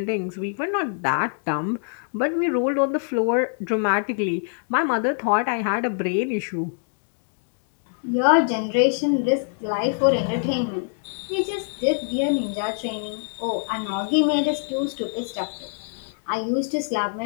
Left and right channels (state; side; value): silent; right; 62 dB below the other